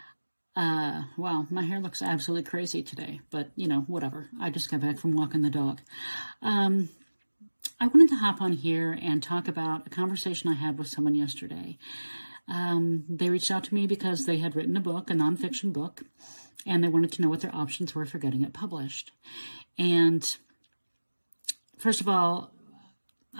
Well, my hair looks absolutely crazy today, but whatever. I just got back from walking the dog. Um, I wanted to hop on here and talk about a conversation I had with someone yesterday. They reached out to me because they had written a book, a nonfiction book, and they wanted to know what their options were for getting it published. And first of all,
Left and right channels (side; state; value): both; inverted; correlation -1.00